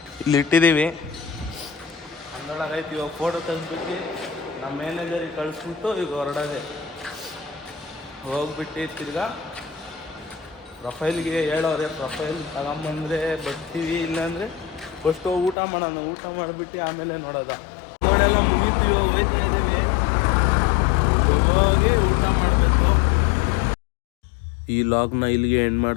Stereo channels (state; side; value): drops out; right; at 15.6 s